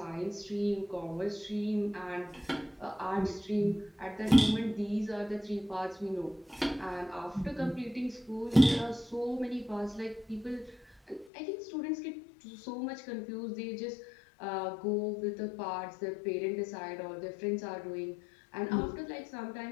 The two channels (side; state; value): right; drops out; at 11.3 s